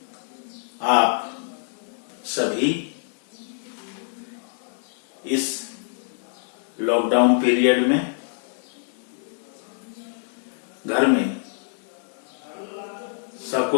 आप सभी इस लॉकडाउन पीरियड में घर में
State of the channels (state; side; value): silent; right; digital silence